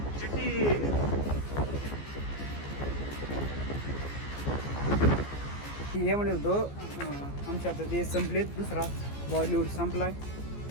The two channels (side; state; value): right; late; 14 ms